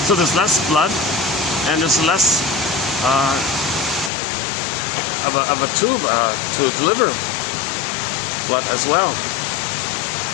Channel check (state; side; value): drops out; right; at 4.1 s